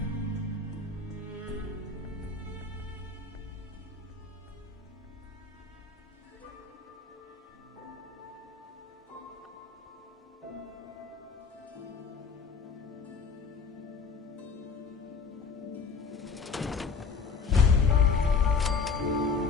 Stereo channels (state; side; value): quieter; right; 5.0 dB